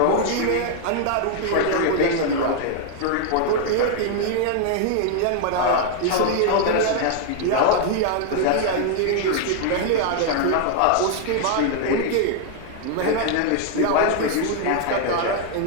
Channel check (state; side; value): different; both; correlation 0.00